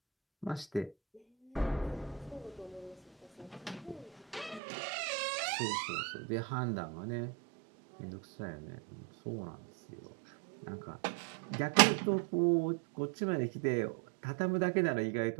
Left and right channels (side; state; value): left; drops out; at 4.6 s